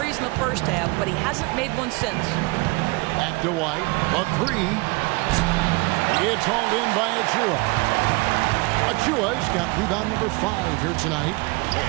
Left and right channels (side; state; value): left; quieter; 25.9 dB